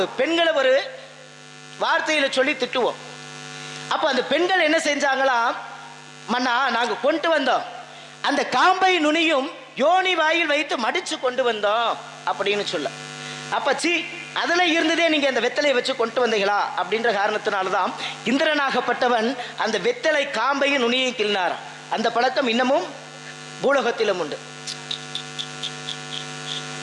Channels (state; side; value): identical; both; correlation 1.00